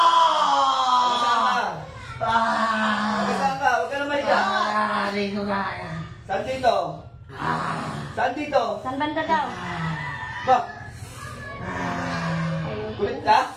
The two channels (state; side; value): identical; both; correlation 1.00